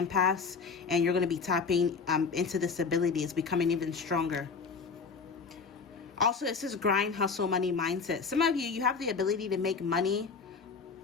and you're going to be tapping into this ability. It's becoming even stronger. Also, it says grind, hustle, money mindset. Some of you have the ability to make money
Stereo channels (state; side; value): quieter; right; 5.2 dB